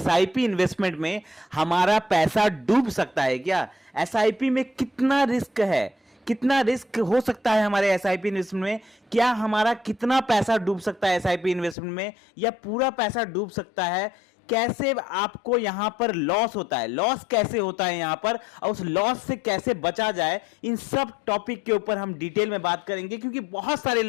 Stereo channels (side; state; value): right; drops out; at 11.8 s